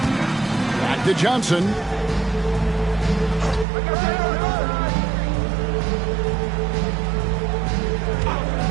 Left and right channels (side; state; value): left; drops out; at 3.7 s